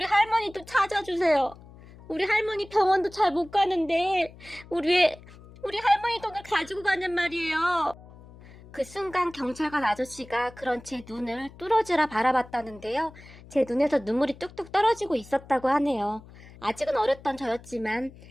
할머니도 찾아주세요. 우리 할머니 병원도 잘 못 가는데 우리 할머니 돈을 가지고 가는 말이에요. 그 순간 경찰관 아저씨가 그런 제 눈을 뚫어지라 바라봤다는데요. 제 눈에서 눈물이 뚝뚝 떨어지고 있었다고 하네요. 아직은 어렸던 저였지만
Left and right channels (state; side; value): noise; left; hum, 20 dB below the sound